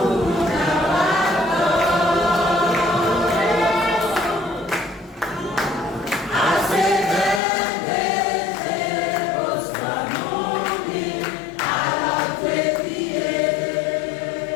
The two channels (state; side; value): drops out; right; at 7.4 s